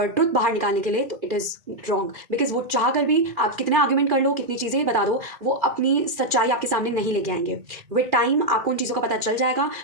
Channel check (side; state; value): left; late; 2.4 ms